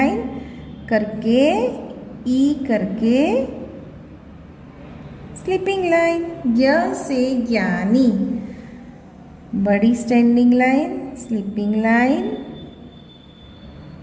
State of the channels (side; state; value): both; identical; correlation 1.00